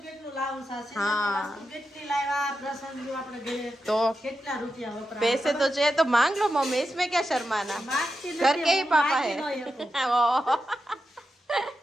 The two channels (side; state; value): both; normal; correlation 0.89